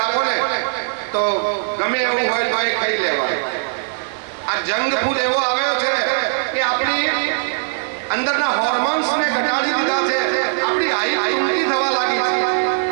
આપો ને તો ગમે એવું હોય તો એ ખાઈ લેવાય। આ જંગભૂત એવો આવ્યો છે કે આપણી અંદરના હોર્મોન્સને ઘટાડી દીધા છે, આપણી હાઈટ ઊંચી થવા લાગી છે।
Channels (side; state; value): left; silent; digital silence